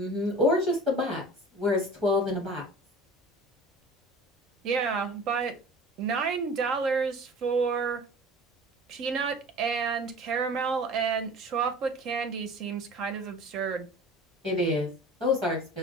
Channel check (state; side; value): normal; both; correlation 0.41